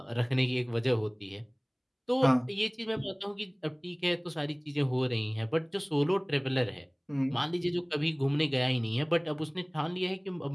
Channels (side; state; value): both; identical; correlation 1.00